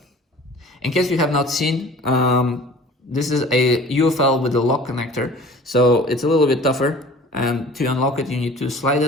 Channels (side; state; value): both; normal; correlation 0.46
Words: In case you have not seen, this is a UFL with a lock connector, so it's a little bit tougher, and to unlock it you need to slide